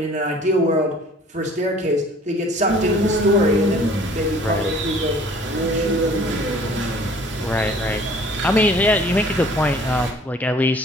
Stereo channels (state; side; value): normal; both; correlation 0.52